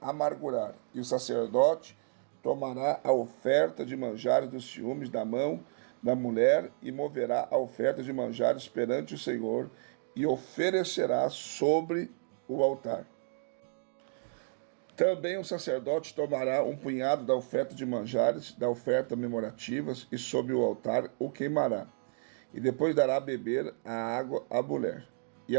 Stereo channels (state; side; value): silent; left; digital silence